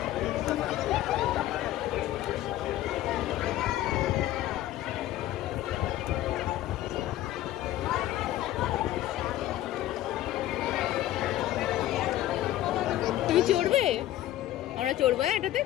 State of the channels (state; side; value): quieter; right; 14.1 dB